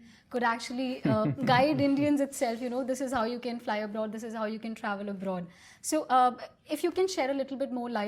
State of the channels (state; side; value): identical; both; correlation 1.00